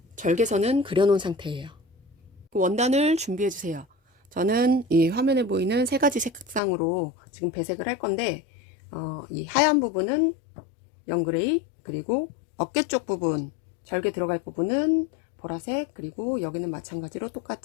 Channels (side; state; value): right; drops out; at 6.6 s